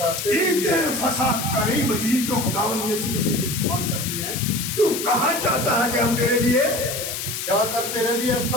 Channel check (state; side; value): noise; left; hiss, 5 dB below the sound